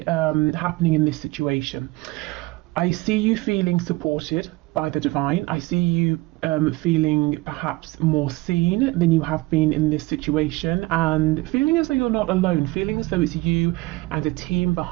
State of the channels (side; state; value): left; quieter; 21.2 dB